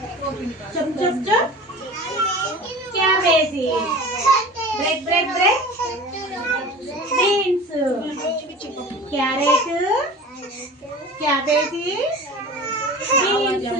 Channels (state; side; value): normal; both; correlation 0.38